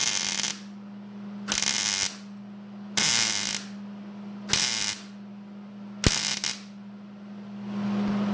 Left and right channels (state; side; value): identical; both; correlation 1.00